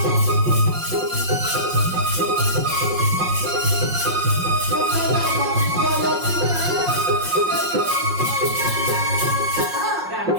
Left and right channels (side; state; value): left; late; 5.6 ms